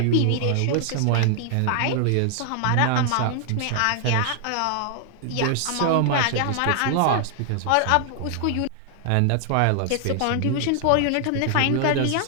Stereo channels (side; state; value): both; different; correlation 0.00